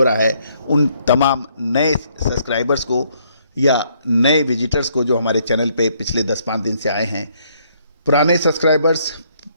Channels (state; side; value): inverted; both; correlation -0.69